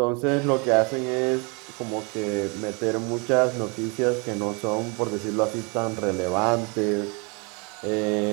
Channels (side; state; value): left; quieter; 31.6 dB